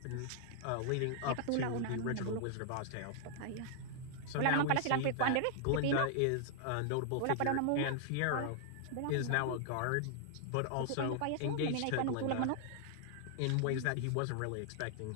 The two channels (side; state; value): both; different; correlation -0.01